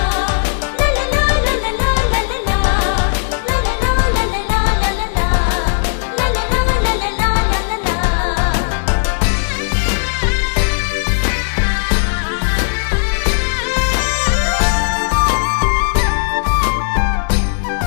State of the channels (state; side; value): silent; right; digital silence